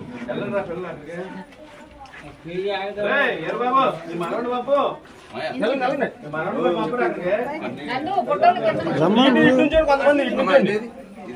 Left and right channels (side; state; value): both; identical; correlation 1.00